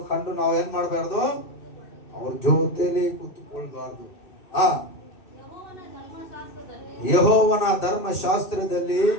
ಕಂಡು ನಾವು ಏನ್ ಮಾಡಬಾರ್ದು? ಅವ್ರ ಜೊತೆಲಿ ಕೂತ್ಕೊಳ್ಬಾರ್ದು. ಯೆಹೋವನ ಧರ್ಮಶಾಸ್ತ್ರದಲ್ಲಿ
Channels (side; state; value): right; late; 2.6 ms